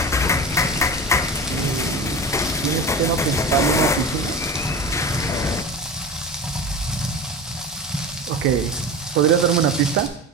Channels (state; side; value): normal; both; correlation 0.29